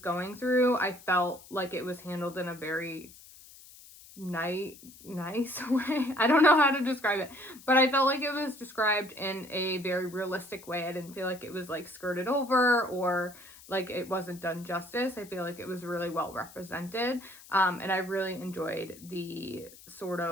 through, I felt like it was handled in a very nice way. I don't know how to describe it, but I felt like it was described in a very realistic way. I didn't feel like it was like skirted over or like it wasn't done justice. I feel like it was really well represented, and I really enjoyed the sort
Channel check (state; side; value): noise; left; hiss, 20 dB below the sound